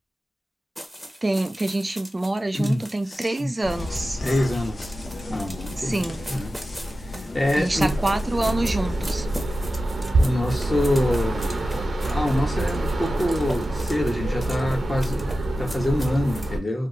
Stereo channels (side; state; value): both; normal; correlation 0.93